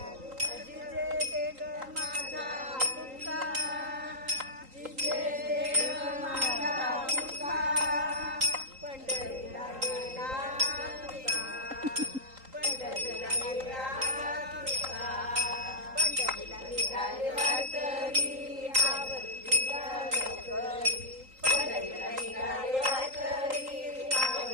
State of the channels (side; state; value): left; late; 3.8 ms